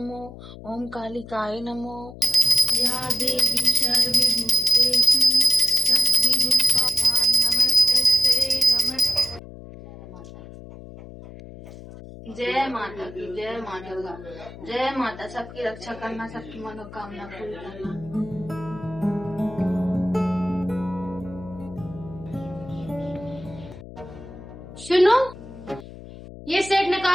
ओम कालिकाय नमो। या देवी सर्वभूतेषु शक्तिरूपा नमस्तस्यै नमः। जय माता की, जय माँ दुर्गा। जय माता, सबकी रक्षा करना, सबकी मनोकामना पूरी करना। सुनो, ये सेट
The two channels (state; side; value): noise; left; hum, 15 dB below the sound